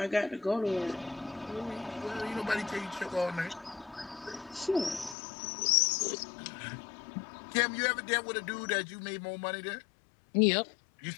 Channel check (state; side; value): drops out; right; at 5.2 s